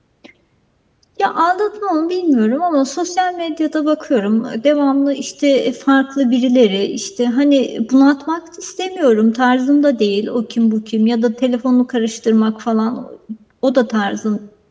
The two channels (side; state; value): both; identical; correlation 1.00